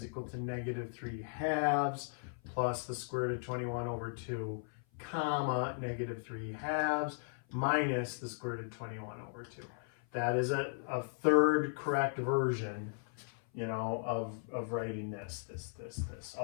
equal to negative 3 halves plus the square root of 21 over 2, comma, negative 3 halves minus the square root of 21 over 2. That is a third correct version, you know, of writing this.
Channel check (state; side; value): silent; right; 53 dB below the other